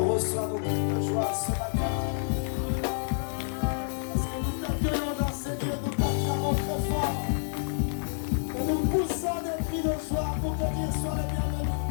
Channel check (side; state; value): right; silent; digital silence